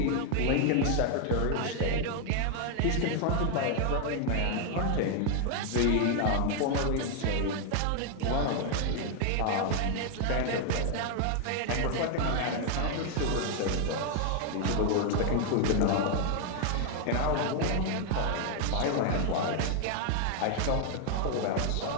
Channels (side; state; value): both; different; correlation 0.00